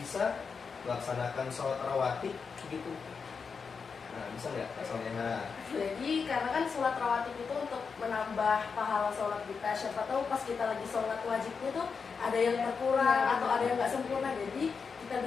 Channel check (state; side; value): quieter; right; 5.5 dB